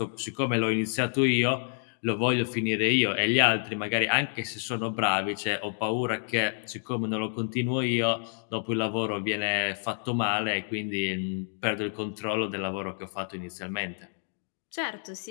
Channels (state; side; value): silent; right; 59 dB below the other